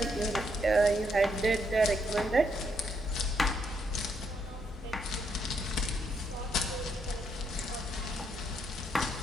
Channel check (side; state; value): both; normal; correlation 0.75